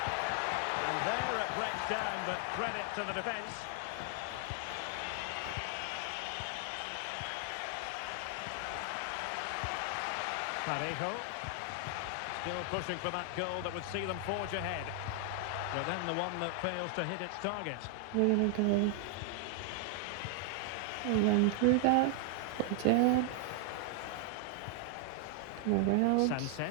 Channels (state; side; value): different; both; correlation 0.00